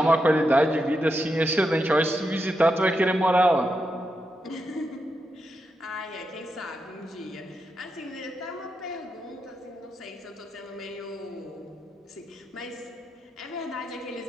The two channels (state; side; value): normal; both; correlation 0.85